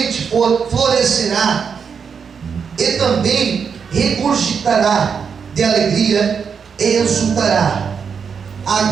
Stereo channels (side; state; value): left; quieter; 6.4 dB